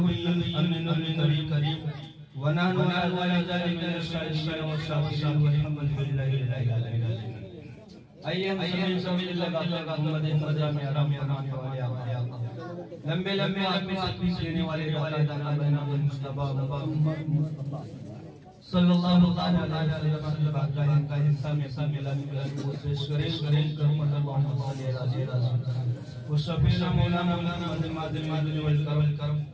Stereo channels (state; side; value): identical; both; correlation 1.00